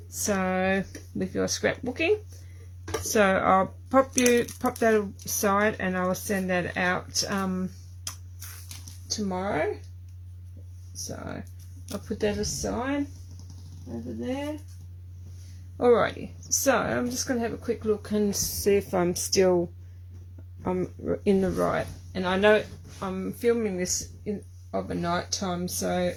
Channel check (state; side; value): identical; both; correlation 1.00